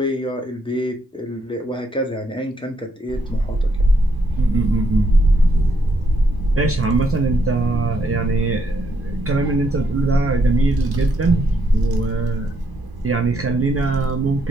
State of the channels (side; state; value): both; normal; correlation 0.75